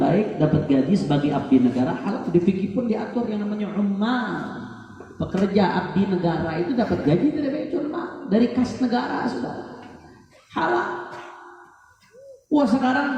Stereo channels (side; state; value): both; identical; correlation 1.00